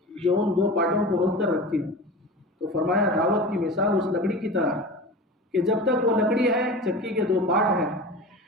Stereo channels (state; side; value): normal; both; correlation 0.33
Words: جو ان 2 پارٹوں کو روک کر رکھتی ہے۔ تو فرمایا دعوت کی مثال اس لکڑی کی طرح کہ جب تک وہ لکڑی ہے، چکی کے 2 پارٹ ہیں،